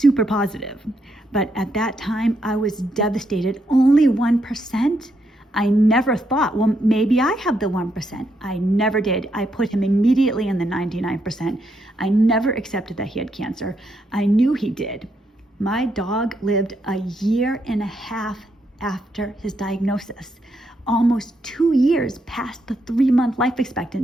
positive, but at that time I was devastated. Only 1%? I never thought, well, maybe I have the 1%. I never did. I put him immediately in the 99%. I never accepted that he had cancer. I knew he did. My dog lived a year and a half after his diagnosis, almost 2 years past the 3-month life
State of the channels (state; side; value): normal; both; correlation 0.78